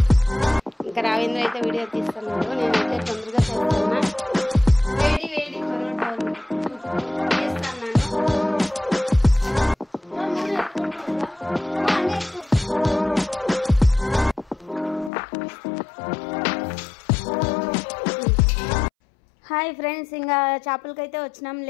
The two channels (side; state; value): right; drops out; at 15.1 s